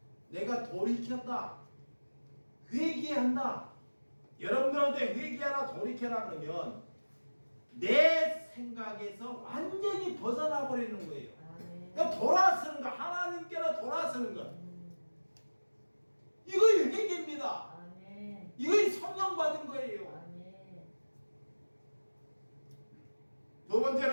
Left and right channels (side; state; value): both; inverted; correlation -1.00